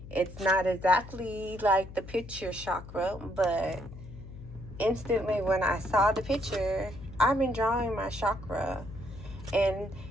It's not exactly like the picture chakra, but instantly when I saw the picture, I've been drawing my chakra. And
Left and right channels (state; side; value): noise; left; hum, 14 dB below the sound